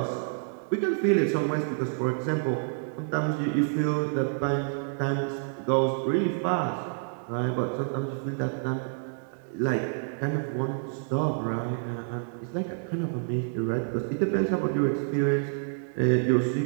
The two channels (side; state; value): left; silent; digital silence